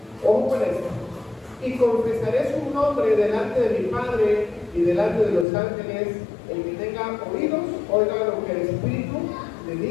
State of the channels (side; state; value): right; drops out; at 5.5 s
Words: Ojo con esto. Y confesaré su nombre delante de mi Padre y delante de los ángeles. El que tenga oídos, oiga lo que el Espíritu le